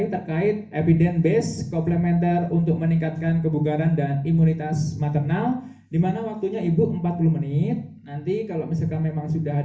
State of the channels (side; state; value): both; identical; correlation 1.00